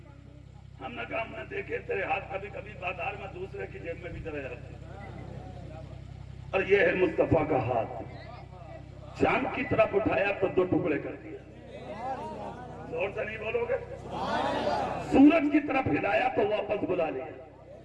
ہم نے کہا ہم نے دیکھے تیرے ہاتھ کبھی کبھی بازار میں دوسرے کی جیب میں بھی چلے جاتے ہیں، اور یہ ہے مصطفیٰ کا ہاتھ، چاند کی طرف اٹھایا تو 2 ٹکڑے کر دیا، زور سے نہیں بولو گے، سورج کی طرف ہلایا تو واپس بلا لیا،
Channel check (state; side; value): identical; both; correlation 1.00